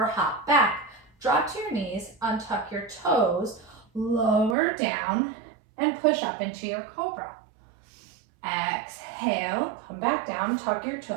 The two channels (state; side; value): drops out; left; at 4.5 s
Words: hop back. Drop to your knees, untuck your toes, lower down, and push up into your cobra. Exhale, come back down, tuck your